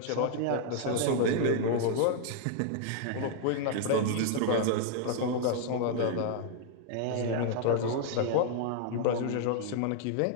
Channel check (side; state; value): both; different; correlation 0.00